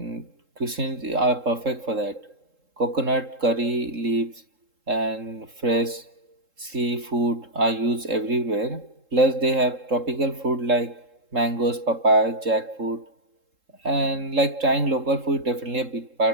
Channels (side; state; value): left; late; 3.7 ms